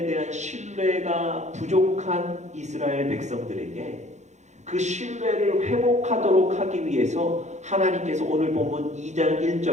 대한 신뢰가 부족한 이스라엘 백성들에게 그 신뢰를 회복하도록 하기 위해서 하나님께서 오늘 본문 2장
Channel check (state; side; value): late; left; 0.34 ms